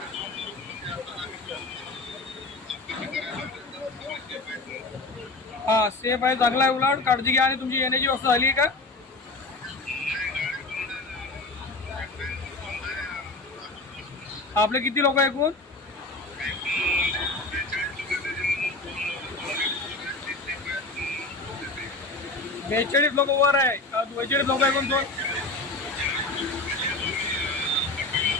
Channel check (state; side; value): quieter; right; 3.2 dB